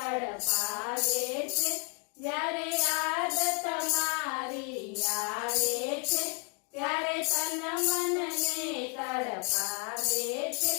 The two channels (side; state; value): right; quieter; 38.4 dB